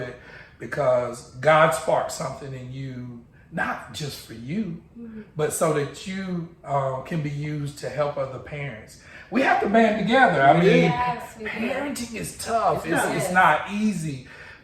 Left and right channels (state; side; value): identical; both; correlation 1.00